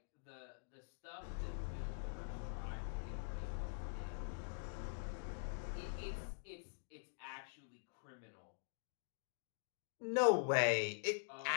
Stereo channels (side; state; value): right; silent; digital silence